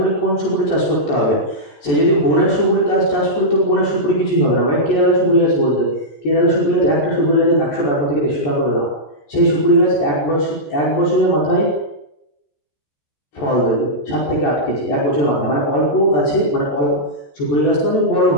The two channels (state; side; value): late; right; 14 ms